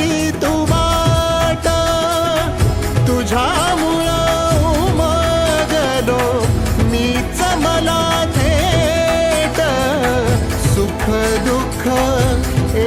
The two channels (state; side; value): identical; both; correlation 1.00